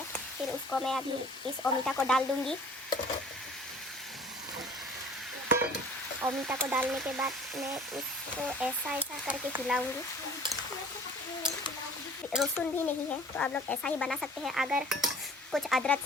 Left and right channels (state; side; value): normal; both; correlation 0.48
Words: फिर उसको मैं अभी इस अमिता को डाल दूँगी। और मीठा को डालने के बाद मैं इसको ऐसा ऐसा करके हिलाऊंगी। लहसुन भी नहीं है तो आप लोग ऐसा ही बना सकते हैं, अगर कुछ अदरक